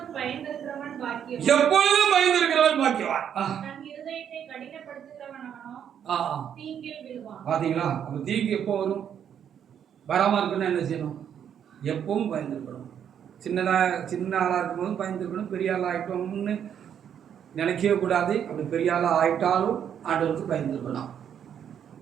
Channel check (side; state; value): left; quieter; 8.8 dB